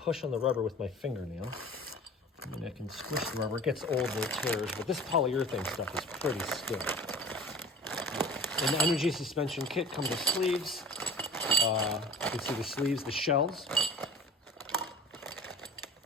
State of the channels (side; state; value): both; normal; correlation 0.40